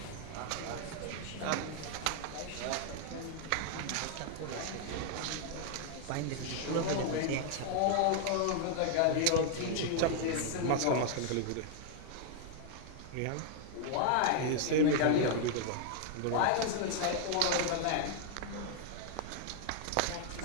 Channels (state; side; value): different; both; correlation 0.00